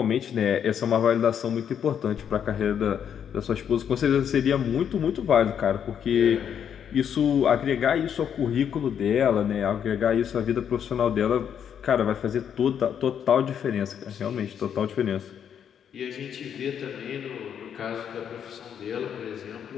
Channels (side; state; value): right; quieter; 8.5 dB